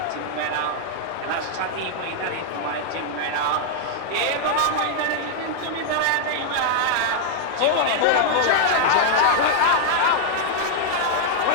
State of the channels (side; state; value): both; different; correlation -0.01